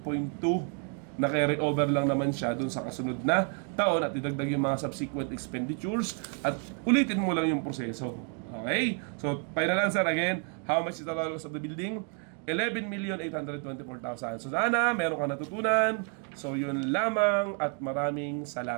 na carry over lang naman siya dun sa kasunod na taon at idagdag yung mga subsequent expenditures at ulitin mo lang yung proseso. Okay? So, final answer again, how much is the total cost of the building? 11,824,000. So, sana meron ka natutunan. So, yun lamang at maraming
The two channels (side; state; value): left; quieter; 36.9 dB